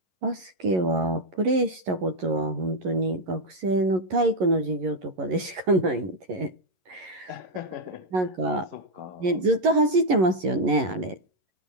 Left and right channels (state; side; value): late; left; 11 ms